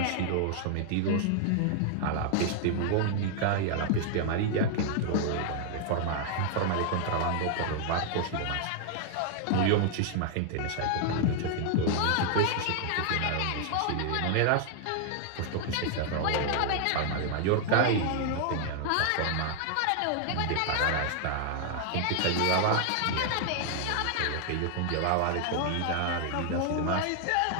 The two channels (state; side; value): different; both; correlation 0.00